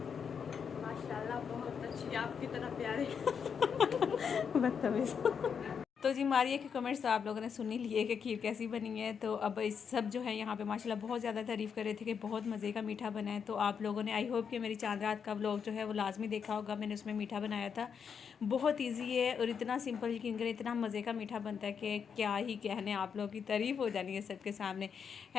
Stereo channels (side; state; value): right; quieter; 6.8 dB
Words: माशाल्लाह बहुत अच्छी, आपकी तरह प्यारे। बदतमीज़। तो जी मारिया के कमेंट्स तो आप लोगों ने सुन ही लिए कि खीर कैसी बनी है। तो अब इस सब जो है यहाँ पे माशाल्लाह बहुत ज़्यादा तारीफ़ कर रहे थे कि बहुत मज़े का मीठा बना है। तो आप लोगों ने आई होप कि मेरी चांद रात का व्लॉग जो है वो लाजमी देखा होगा। मैंने उसमें मीठा बनाया था, बहुत ईजी है और इतना सिंपल, यकीन करें इतना मज़े का मीठा बनता है कि क्या ही कहने, आप लोगों की तारीफ़ हो जानी है सबके सामने।